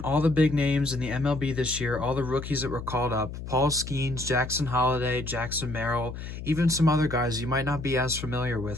all the big names in the MLB this year, all the rookies that were called up. Paul Skenes, Jackson Holliday, Jackson Merrill, even some other guys you might not be as familiar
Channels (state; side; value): noise; left; hum, 9 dB below the sound